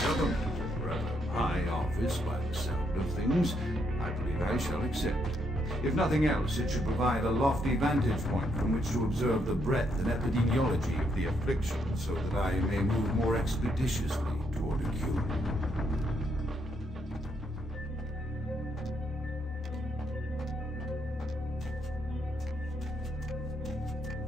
a rather high office by the sound of things. I believe I shall accept. If nothing else, it should provide a lofty vantage point from which to observe the breadth and epidemiology of the affliction, so that I may move more expeditiously toward a cure.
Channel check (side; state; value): both; normal; correlation 0.75